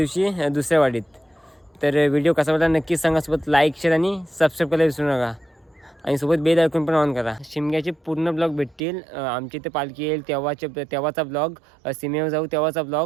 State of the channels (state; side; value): drops out; left; at 8.8 s